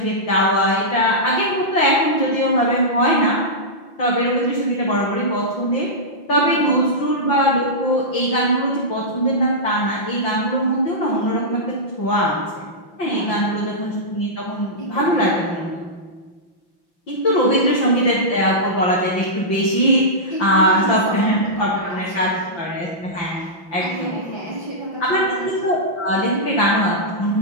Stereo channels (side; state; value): right; late; 5.8 ms